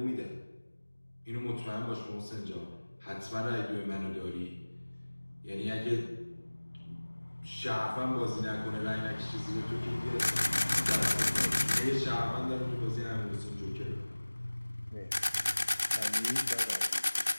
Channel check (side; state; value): both; inverted; correlation -1.00